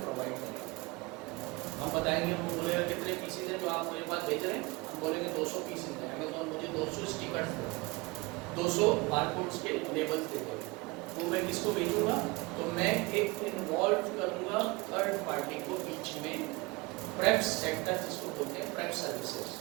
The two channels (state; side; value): quieter; left; 24.3 dB